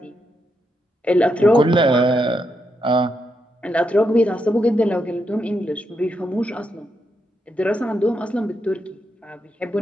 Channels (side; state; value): both; normal; correlation 0.82